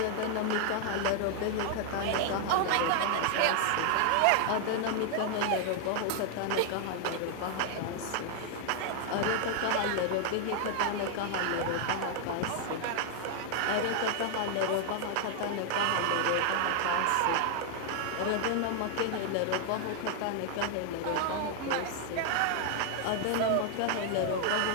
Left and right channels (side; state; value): both; different; correlation 0.00